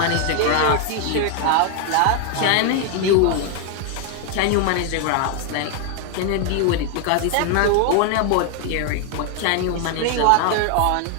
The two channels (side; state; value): both; different; correlation 0.00